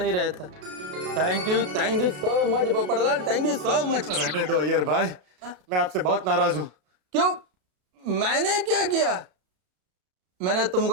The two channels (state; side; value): late; left; 33 ms